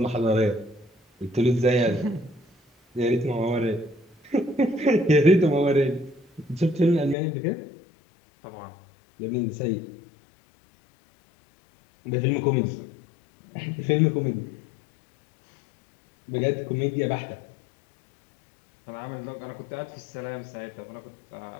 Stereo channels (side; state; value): right; drops out; at 7.2 s